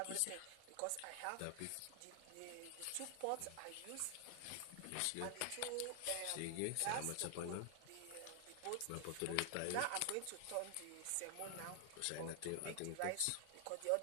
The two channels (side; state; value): both; different; correlation 0.00